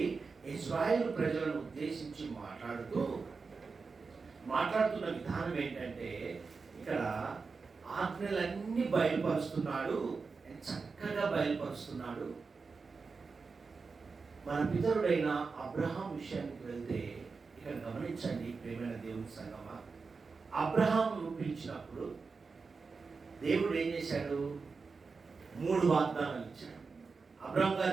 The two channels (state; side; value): quieter; left; 4.6 dB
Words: ఇశ్రాయేలు ప్రజలను ఉద్దేశించి మాట్లాడుతున్న విధానం ఏంటంటే, ఇక్కడ ఆజ్ఞలన్నీ బయలుపరుస్తున్నాడు, చక్కగా బయలుపరుస్తున్నాడు. మన పితరుడైన అబ్రహాం విషయానికి వెళ్తే ఇక్కడ గమనించండి ప్రియమైన దేవుని సంగమా, అబ్రహాంను పిలిచినప్పుడు దేవుడు ఏం చేశాడు? 3 వాగ్దానాలు ఇచ్చాడు. అబ్రహాం